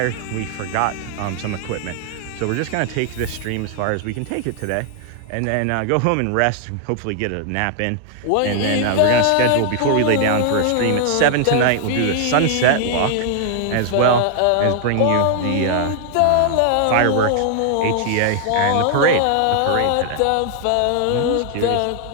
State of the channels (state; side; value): different; both; correlation 0.00